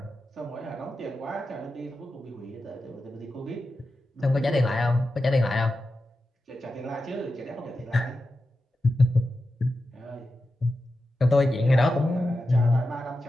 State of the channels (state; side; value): normal; both; correlation 0.91